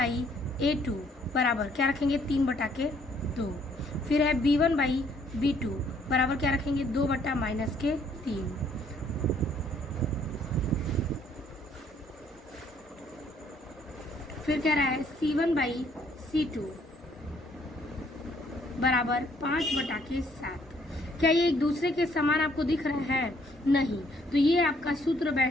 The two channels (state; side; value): normal; both; correlation 0.65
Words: a2 बराबर क्या रखेंगे, 3/2। फिर है b1 बाई b2 बराबर क्या रखेंगे, 2 बटा -3। फिर कह रहा है c1 बाई c2 बराबर 5/7। क्या ये एक दूसरे के समान आपको दिख रहा है, नहीं। तो ये आपका सूत्र